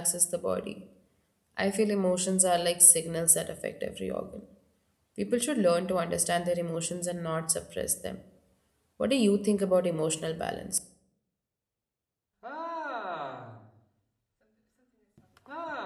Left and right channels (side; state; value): both; identical; correlation 1.00